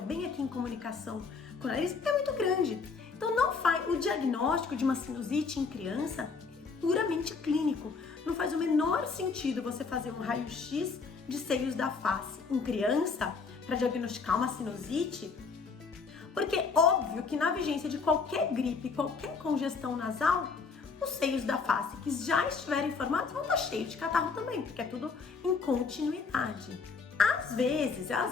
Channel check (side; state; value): right; quieter; 4.9 dB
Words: aqui em comunicação com o nariz, é muito grande. Então o diagnóstico de uma sinusite em criança é puramente clínico. Não faz o menor sentido você fazer um raio-x de seios da face em criança para diagnosticar uma sinusite, porque óbvio que na vigência de qualquer gripe, qualquer congestão nasal, os seios da face que já estiverem formados vão estar cheios de catarro também, porque é tudo em continuidade. Às